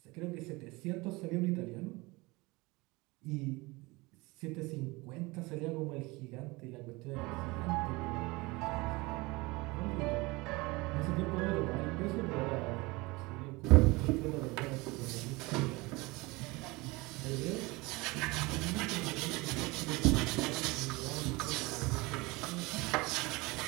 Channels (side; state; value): left; quieter; 23.6 dB